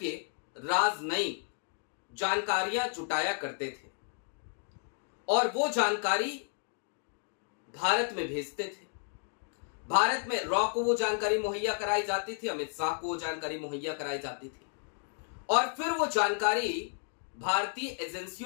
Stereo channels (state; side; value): silent; right; 56 dB below the other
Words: राजनयिक जानकारियां जुटाया करते थे और वो जानकारी भारत में भेजते थे। भारत में रॉ को वो जानकारी मुहैया कराई जाती थी, अमित शाह को वो जानकारी मुहैया कराई जाती थी और फिर वो जानकारी भारतीय